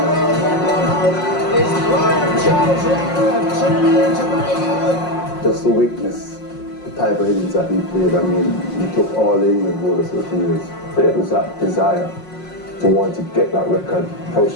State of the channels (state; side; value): late; right; 5.5 ms